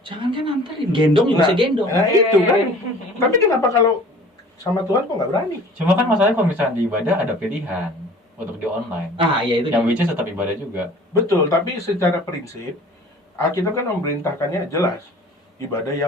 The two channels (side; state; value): both; normal; correlation 0.47